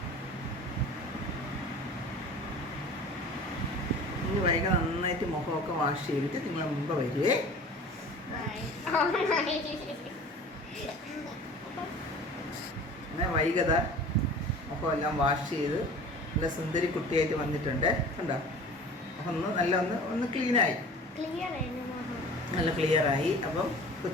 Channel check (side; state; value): both; normal; correlation 0.42